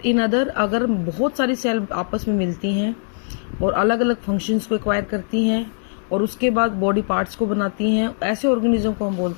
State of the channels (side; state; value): right; silent; digital silence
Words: in other अगर बहुत सारी cell आपस में मिलती हैं और अलग अलग फंक्शंस को एक्वायर करती हैं और उसके बाद बॉडी पार्ट्स को बनाती हैं, ऐसे ऑर्गेनिज्म को हम